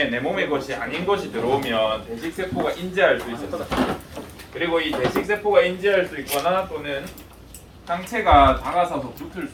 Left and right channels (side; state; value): both; identical; correlation 1.00